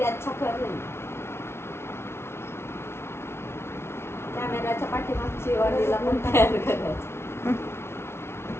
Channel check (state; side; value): late; right; 0.12 ms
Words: अच्छा कर रही. कॅमेराच्या पाठीमागची वाडीला पण तयार करायचं.